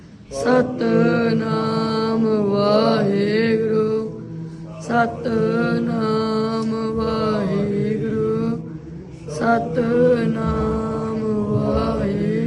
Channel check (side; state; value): both; identical; correlation 1.00